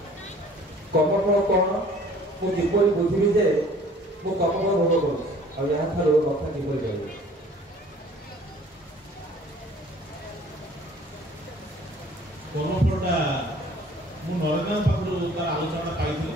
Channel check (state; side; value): normal; both; correlation 0.52